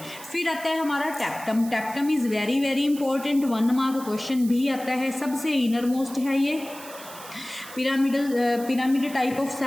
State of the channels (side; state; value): right; noise; hiss, 16 dB below the sound